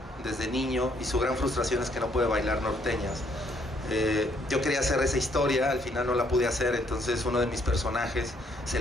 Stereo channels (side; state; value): both; normal; correlation 0.68